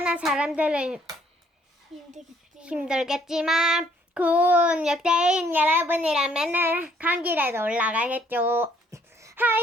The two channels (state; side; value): normal; both; correlation 0.65